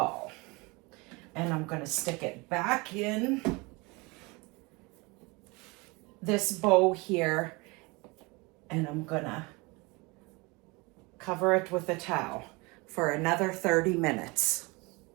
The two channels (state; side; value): quieter; left; 26.3 dB